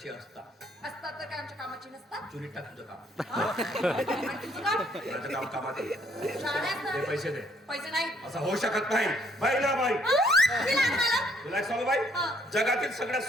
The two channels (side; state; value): both; normal; correlation 0.66